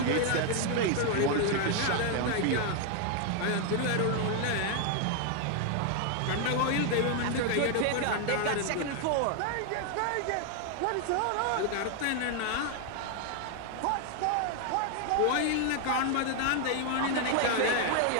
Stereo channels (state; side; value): different; both; correlation 0.00